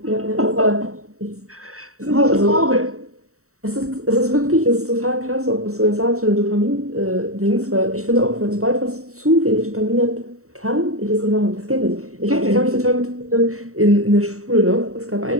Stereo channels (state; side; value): late; left; 0.64 ms